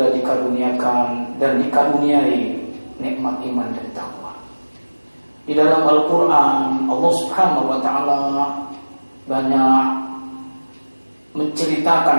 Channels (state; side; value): inverted; both; correlation -1.00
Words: dikaruniakan dan dikaruniai nikmat iman dan takwa. Di dalam Al-Quran, Allah Subhanahu wa Ta'ala banyak